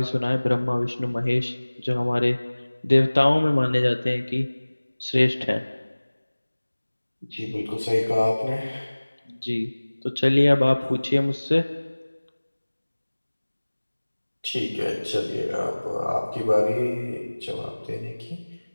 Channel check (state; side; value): inverted; both; correlation -1.00